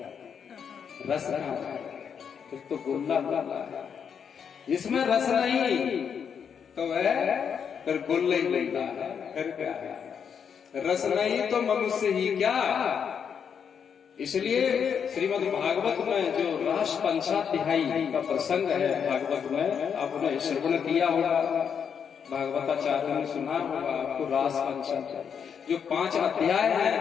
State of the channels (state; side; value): quieter; right; 7.2 dB